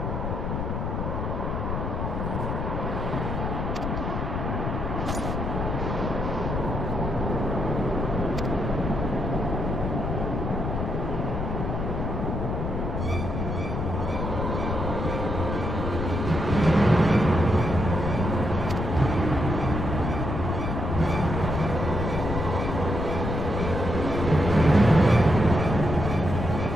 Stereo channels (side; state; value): left; noise; rumble, 2 dB below the sound